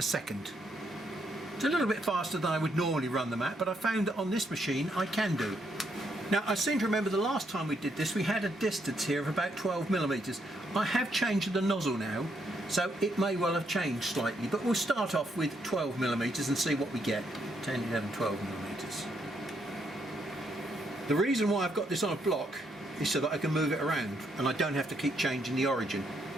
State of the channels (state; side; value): normal; both; correlation 0.75